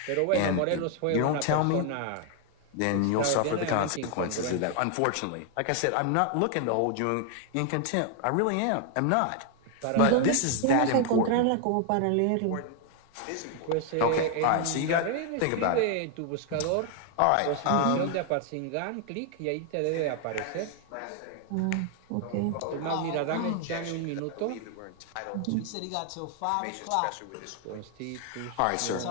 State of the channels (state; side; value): different; both; correlation 0.00